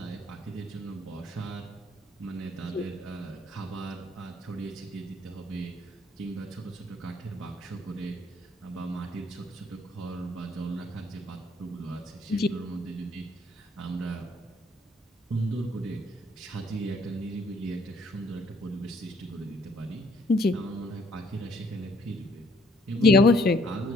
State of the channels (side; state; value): both; normal; correlation 0.64